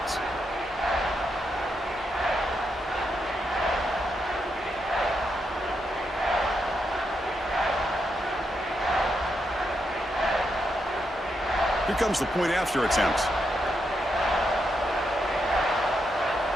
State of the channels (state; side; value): normal; both; correlation 0.82